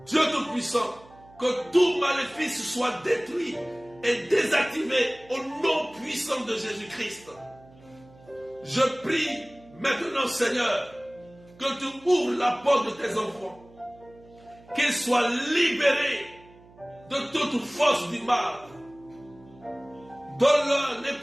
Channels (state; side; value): noise; right; hum, 25 dB below the sound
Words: Dieu Tout-Puissant, que tout maléfice soit détruit et désactivé au nom puissant de Jésus-Christ. Je prie Maintenant, Seigneur, que tu ouvres la porte de tes enfants, qu'ils soient libérés de toute force du mal. Donne-leur